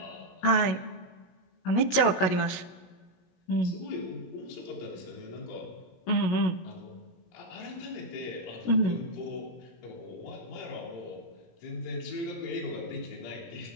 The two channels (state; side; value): late; right; 16 ms